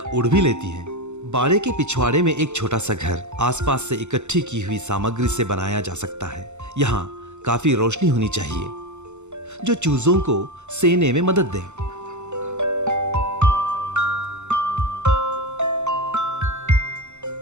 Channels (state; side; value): late; left; 0.83 ms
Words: उड़ भी लेती हैं। बाड़े के पिछवाड़े में एक छोटा सा घर आसपास से इकट्ठी की हुई सामग्री से बनाया जा सकता है। यहाँ काफी रोशनी होनी चाहिए जो चूजों को सेने में मदद दे।